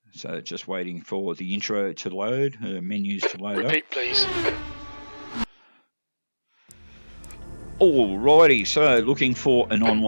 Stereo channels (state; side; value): inverted; both; correlation -1.00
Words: So just waiting for the intro to load, menus to load Repeat, please. Alrighty, so looking for an